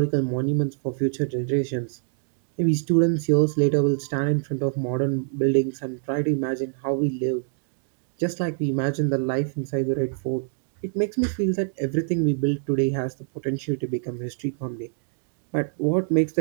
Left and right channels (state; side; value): silent; left; digital silence